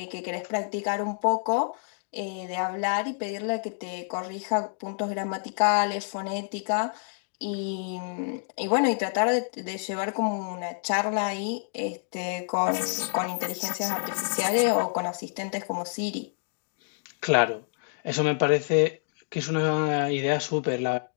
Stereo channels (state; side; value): silent; right; digital silence